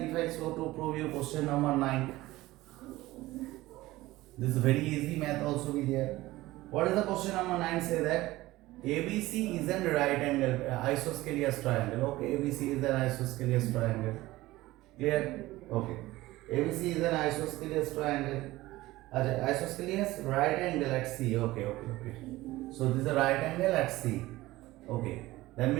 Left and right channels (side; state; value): left; quieter; 18.0 dB